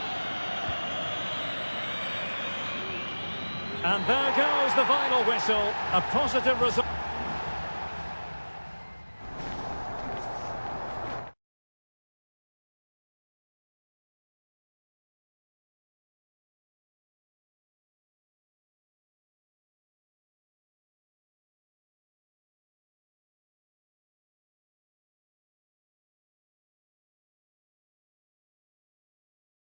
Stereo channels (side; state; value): both; inverted; correlation -1.00